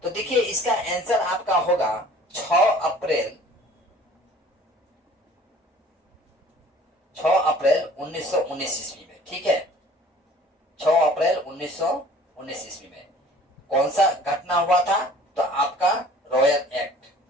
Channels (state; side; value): normal; both; correlation 0.50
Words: तो देखिए, इसका आंसर आपका होगा 6 अप्रैल 1919 ईस्वी में। ठीक है, 6 अप्रैल 1919 ईस्वी में कौन सा घटना हुआ था? तो आपका रॉयल एक्ट।